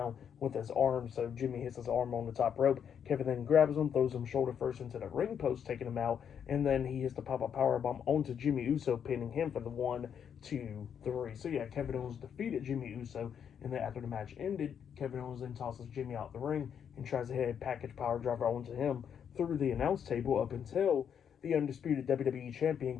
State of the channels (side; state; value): right; quieter; 8.0 dB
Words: with his arm. So Jimmy hits his arm on the top rope. Kevin then grabs him, throws him shoulder first into the ring post, taking him out. And then he hits the pop-up powerbomb onto Jimmy Uso, pinning him for the 1, 2, 3. So yeah, Kevin Owens defeated Jimmy Uso. And then after the match ended, Kevin Owens then tosses Jimmy out the ring and tries to hit a package power driver onto him through the announce table, up until the undisputed WWE Champion